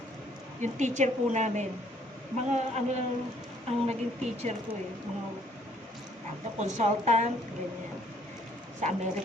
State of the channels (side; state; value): both; normal; correlation 0.63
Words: Yung teacher po namin. Mga ang naging teacher ko eh. Mga consultant, ganyan. Sa